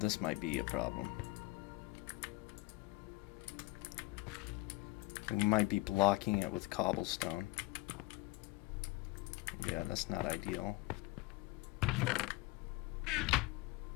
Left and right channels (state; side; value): quieter; right; 21.2 dB